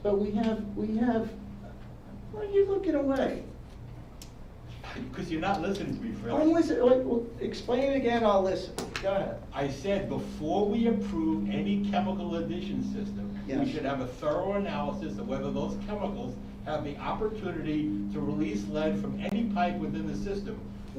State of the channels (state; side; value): identical; both; correlation 1.00